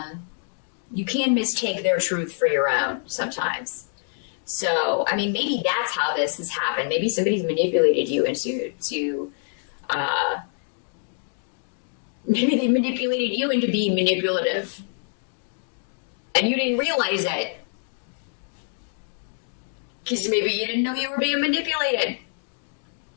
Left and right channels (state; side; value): silent; right; 61 dB below the other